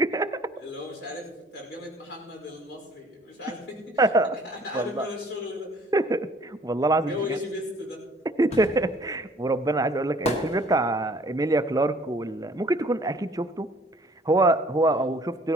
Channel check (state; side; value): normal; both; correlation 0.56